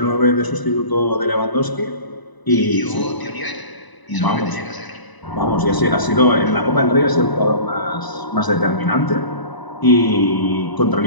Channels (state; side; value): late; right; 1.0 ms